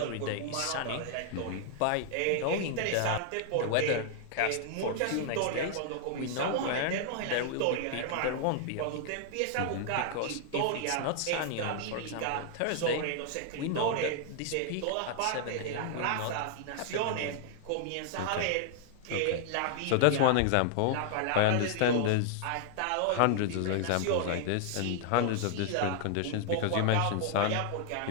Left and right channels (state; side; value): different; both; correlation -0.01